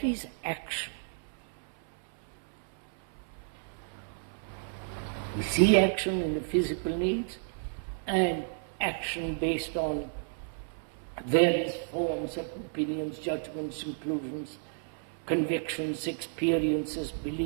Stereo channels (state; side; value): silent; left; 57 dB below the other